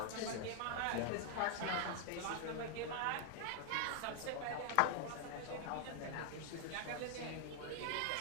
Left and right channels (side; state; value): both; different; correlation 0.00